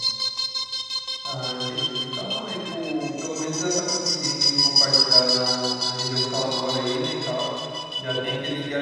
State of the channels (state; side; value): identical; both; correlation 1.00